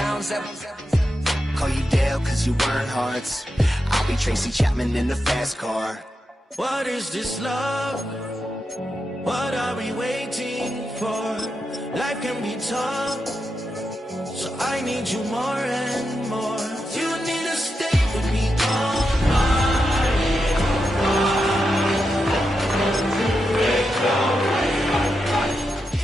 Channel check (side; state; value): both; normal; correlation 0.87